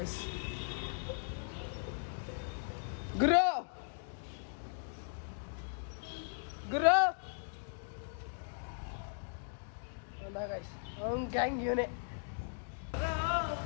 ಗುರು ಅವ್ನ ಗ್ಯಾಂಗ್ ಇವನೇ.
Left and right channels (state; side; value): silent; right; digital silence